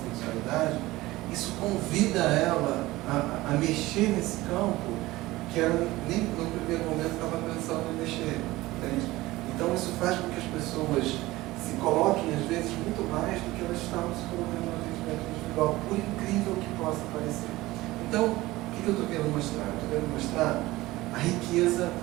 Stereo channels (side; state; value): left; quieter; 18.7 dB